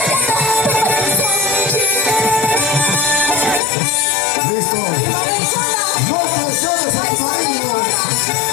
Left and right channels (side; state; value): right; drops out; at 3.6 s